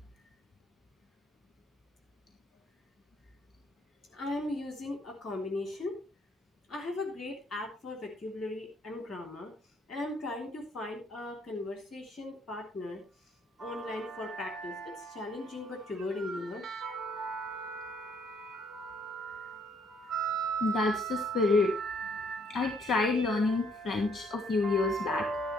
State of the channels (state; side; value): normal; both; correlation 0.66